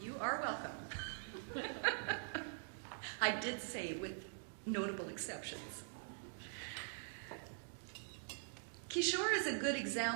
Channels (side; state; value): left; silent; digital silence